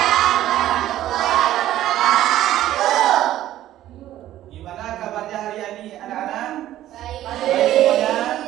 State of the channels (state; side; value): quieter; left; 13.4 dB